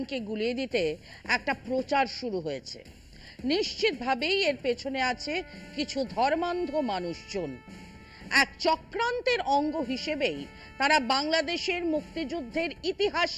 গুলিয়ে দিতে একটা প্রচার শুরু হয়েছে। নিশ্চিতভাবেই এর পেছনে আছে কিছু ধর্মান্ধ মানুষজন। এক চক্রান্তের অঙ্গ হিসেবেই তারা বাংলাদেশের মুক্তিযুদ্ধের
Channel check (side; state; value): both; identical; correlation 1.00